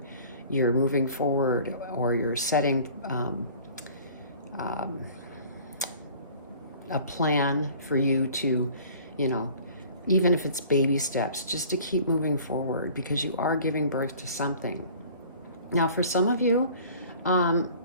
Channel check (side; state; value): both; inverted; correlation -0.48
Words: moving forward, or you're setting a plan for you to, even if it's baby steps, just to keep moving forward, because you are giving birth to something. Now, for some of you,